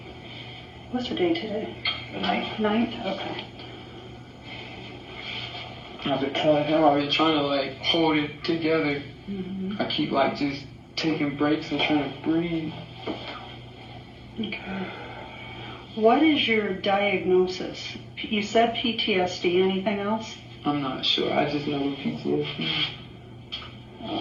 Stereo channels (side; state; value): both; identical; correlation 1.00